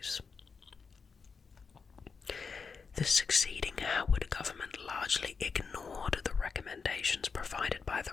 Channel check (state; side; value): quieter; right; 5.3 dB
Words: The succeeding Howard government largely ignored the recommendations provided by